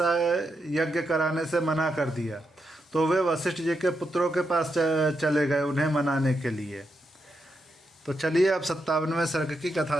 यज्ञ कराने से मना कर दिया, तो वे वशिष्ठ जी के पुत्रों के पास चले गए उन्हें मनाने के लिए। तो चलिए अब 57वें सर्ग की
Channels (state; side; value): normal; both; correlation 0.83